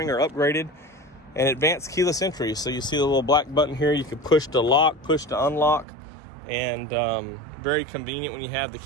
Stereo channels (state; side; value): drops out; left; at 5.9 s